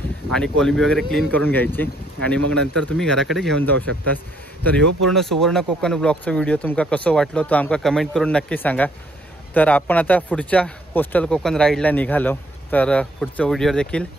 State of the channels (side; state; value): both; normal; correlation 0.67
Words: आणि कोलंबी वगैरे क्लीन करून घ्यायची आणि मग नंतर तुम्ही घराकडे घेऊन जाऊ शकता. तर ह्यो पूर्ण सुवर्ण कोकण ब्लॉगचा व्हिडिओ तुमका कसं वाटलो तो आमका कमेंट करून नक्की सांगा. तर आपण आता पुढच्या कोस्टल कोकण राईडला निघालो, तर पुढचा व्हिडिओ देखील